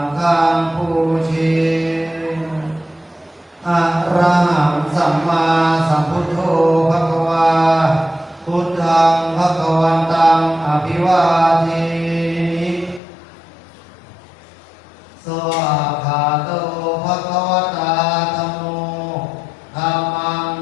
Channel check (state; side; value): drops out; right; at 13.0 s